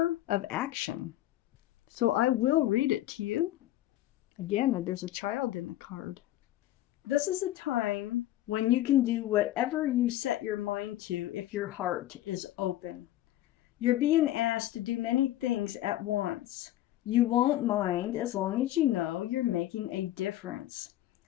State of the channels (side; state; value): right; quieter; 14.3 dB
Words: of Action. So I will read it to you. Again, there's a child in the card. This is a time when you can do whatever you set your mind to if your heart is open. You're being asked to do many things at once. You won't mind as long as you know you're making a difference.